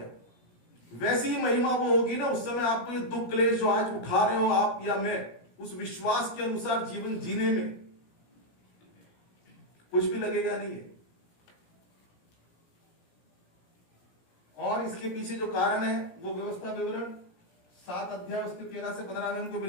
वैसी ही महिमा वो होगी ना, उस समय आपको ये दुख क्लेश जो आज उठा रहे हो आप या मैं, उस विश्वास के अनुसार जीवन जीने में कुछ भी लगेगा नहीं है। और इसके पीछे जो कारण है वो व्यवस्था विवरण 7 अध्याय उसके 13 से 15 में हमको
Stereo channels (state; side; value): late; right; 17 ms